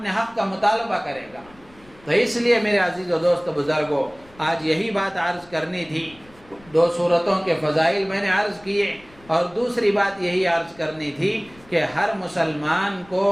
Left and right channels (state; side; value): noise; left; rumble, 26 dB below the sound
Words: حق کا مطالبہ کرے گا۔ تو اس لیے میرے عزیز و دوست بزرگوں، آج یہی بات عرض کرنی تھی۔ 2 سورتوں کے فضائل میں نے عرض کیے، اور دوسری بات یہی عرض کرنی تھی کہ ہر مسلمان کو